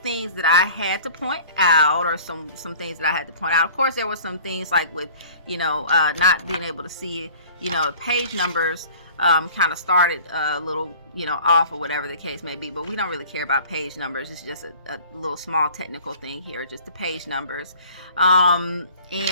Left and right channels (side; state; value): both; inverted; correlation -0.47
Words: that I had to point out, or some things that I had to point out. Of course, there were some things like with not being able to see page numbers. Kind of started a little off, or whatever the case may be, but we don't really care about page numbers. It's just a little small technical thing here, just the page numbers.